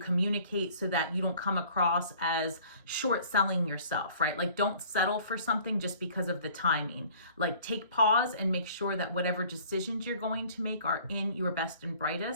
so that you don't come across as short selling yourself, right? Like, don't settle for something just because of the timing. Like, take pause and make sure that whatever decisions you're going to make are in your best and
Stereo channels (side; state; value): both; inverted; correlation -0.52